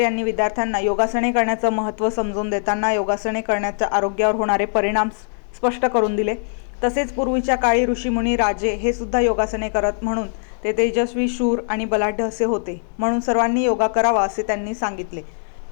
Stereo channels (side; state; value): right; silent; digital silence